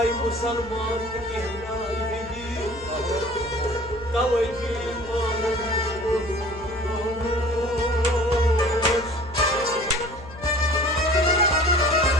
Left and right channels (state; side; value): noise; left; hum, 17 dB below the sound